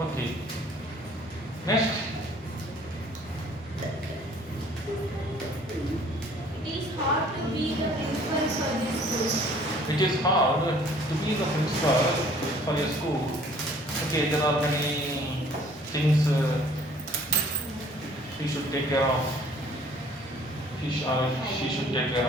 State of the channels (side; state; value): both; normal; correlation 0.55